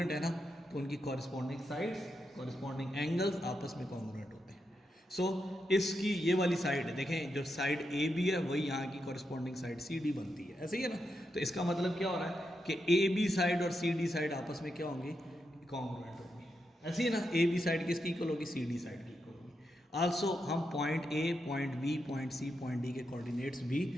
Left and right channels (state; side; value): normal; both; correlation 0.85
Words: है ना, तो उनकी कॉरस्पॉन्डिंग साइड्स, कॉरस्पॉन्डिंग एंगल्स आपस में कॉन्ग्रुएंट होते हैं। सो इसकी ये वाली साइड देखें, जो साइड AB है वही यहाँ की कॉरस्पॉन्डिंग साइड CD बनती है, ऐसे ही है ना। तो इसका मतलब क्या हो रहा है कि AB साइड और CD साइड आपस में क्या होंगी, कॉन्ग्रुएंट होंगी, ऐसे ही है ना। AB साइड किसकी इक्वल होगी, CD साइड की इक्वल होगी। आल्सो हम point A, point B, point C, point D के कोऑर्डिनेट्स